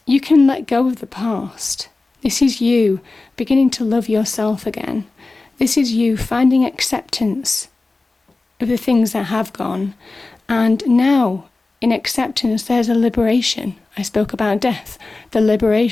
can let go of the past. This is you beginning to love yourself again. This is you finding acceptance of the things that have gone. And now, in acceptance, there's a liberation. I spoke about death, the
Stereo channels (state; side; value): quieter; right; 3.4 dB